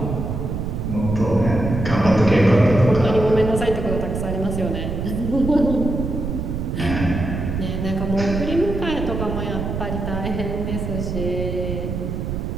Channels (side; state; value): right; noise; rumble, 3 dB below the sound